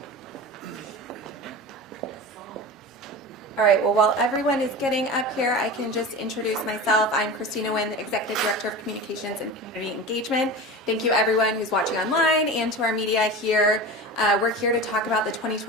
All right, well, while everyone is getting up here, I can just introduce myself. I'm Christina Nguyen, the Executive Director of Communications and Community Engagement. Thank you, everyone who's watching online and to our media here. We're here to talk about the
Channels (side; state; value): both; normal; correlation 0.30